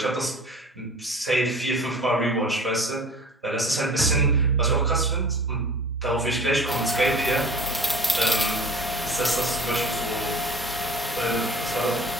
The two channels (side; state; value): both; normal; correlation 0.44